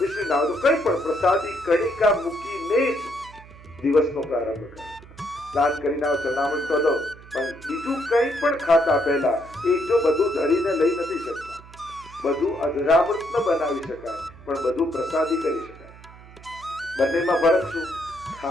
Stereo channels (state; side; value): noise; right; hum, 20 dB below the sound